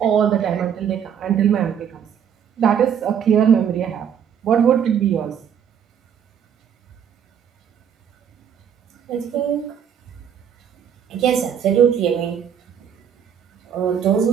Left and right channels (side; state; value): left; quieter; 8.3 dB